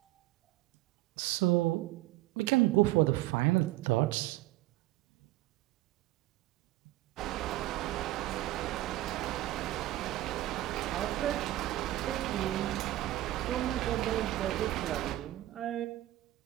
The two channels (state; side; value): quieter; left; 16.2 dB